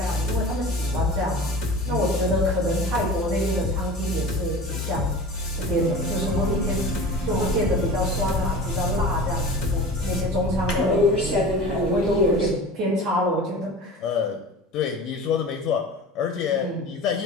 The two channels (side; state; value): both; normal; correlation 0.36